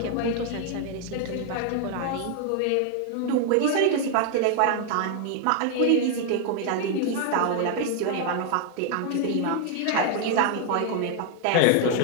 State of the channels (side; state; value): both; different; correlation 0.00